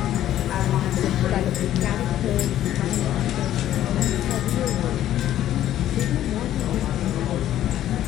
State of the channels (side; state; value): right; quieter; 12.4 dB